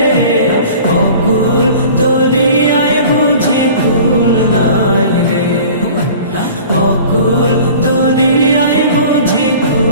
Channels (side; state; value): both; inverted; correlation -0.44